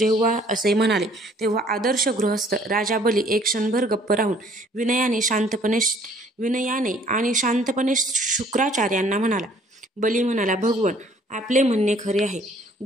असे म्हणाले तेव्हा आदर्श गृहस्थ राजा बली एक क्षणभर गप्प राहून विनयाने आणि शांतपणे शुक्राचार्यांना म्हणाला. बली म्हणाला, भगवन, आपले म्हणणे खरे आहे.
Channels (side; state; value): both; normal; correlation 0.58